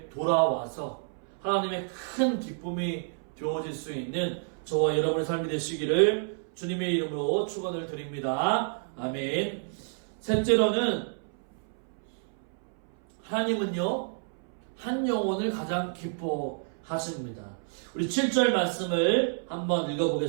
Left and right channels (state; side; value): silent; left; 58 dB below the other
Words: 돌아와서 하나님의 큰 기쁨이 되어질 수 있는 저와 여러분의 삶이 되시기를 주님의 이름으로 축원을 드립니다. 아멘. 셋째로는 하나님은요, 한 영혼을 가장 기뻐하십니다. 우리 7절 말씀을 한번